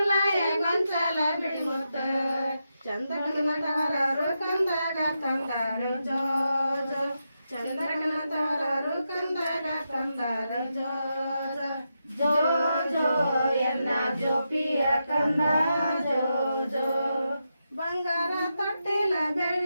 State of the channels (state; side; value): inverted; both; correlation -0.86